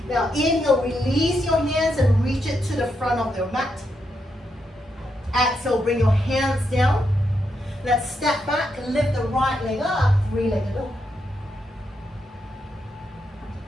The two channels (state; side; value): normal; both; correlation 0.82